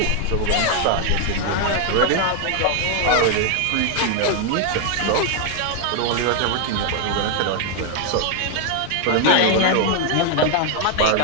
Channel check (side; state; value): both; different; correlation 0.00